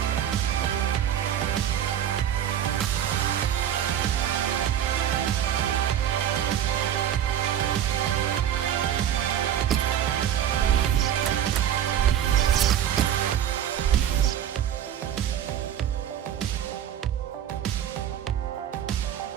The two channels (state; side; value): quieter; left; 10.2 dB